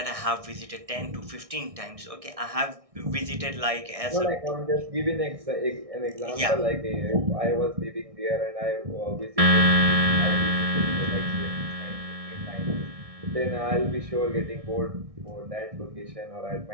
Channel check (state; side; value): late; left; 1.6 ms